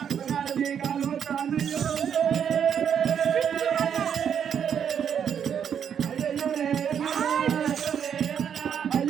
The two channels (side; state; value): left; quieter; 8.2 dB